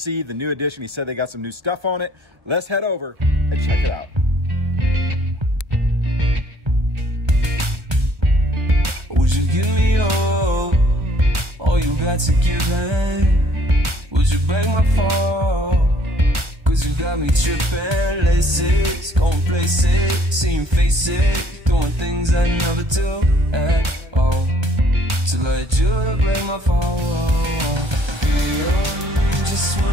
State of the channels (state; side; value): late; left; 1.3 ms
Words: the new edition. He said they got some new stuff on it. Let's head over and check it out. Would you give me all you got to give me? Would you break my fall? Cause you got me tripping, laces, going places, seeing faces, doing things I never do at all. Till I do to break my fall. Be on me just